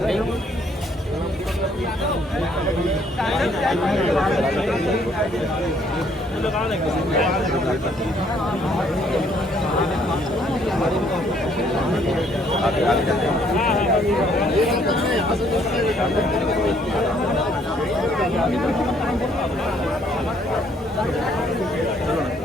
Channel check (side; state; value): both; normal; correlation 0.65